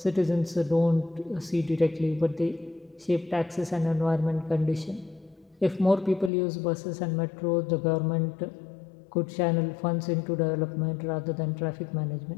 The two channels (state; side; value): drops out; right; at 6.3 s